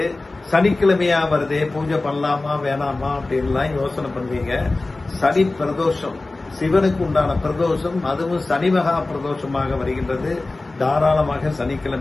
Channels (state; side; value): quieter; right; 3.2 dB